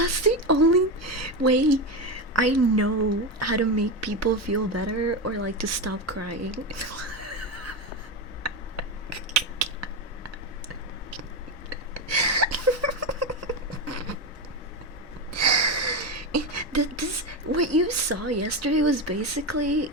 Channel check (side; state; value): both; normal; correlation 0.15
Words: the only way I know how to make people feel better or like to stop crying. What you saw yesterday was basically